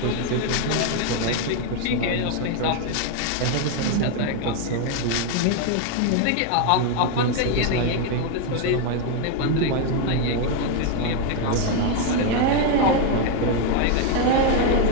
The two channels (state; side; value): different; both; correlation 0.01